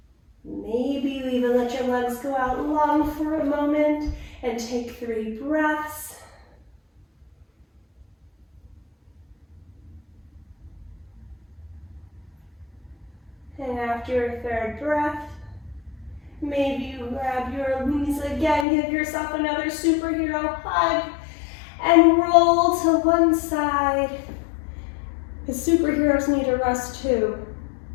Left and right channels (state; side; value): drops out; right; at 18.7 s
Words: Maybe you even let your legs go out long for a moment and take 3 breaths. And after your 3rd breath, maybe you grab your knees again, give yourself another superhero hug, and roll to one side. The superheroes need a rest too.